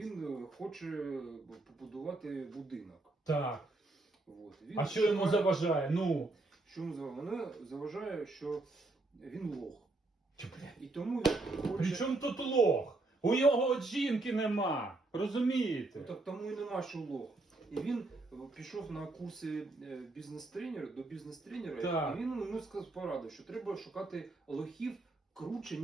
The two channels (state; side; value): quieter; left; 3.1 dB